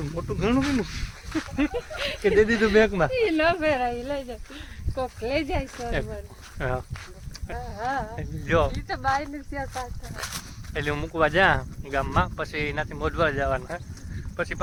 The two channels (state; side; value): identical; both; correlation 1.00